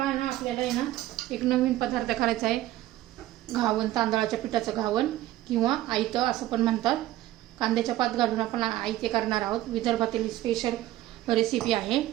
ना, आपल्याला आहे ना एक नवीन पदार्थ करायचा आहे। घावन, तांदळाच्या पिठाचं घावन किंवा आयतं असं पण म्हणतात। कांद्याच्या पात घालून आपण आयते करणार आहोत। विदर्भातील स्पेशल रेसिपी आहे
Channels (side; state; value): left; quieter; 15.0 dB